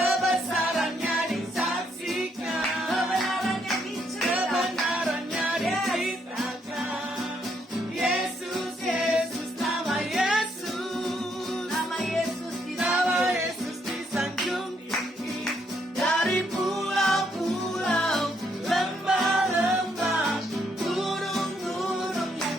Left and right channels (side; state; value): both; normal; correlation 0.73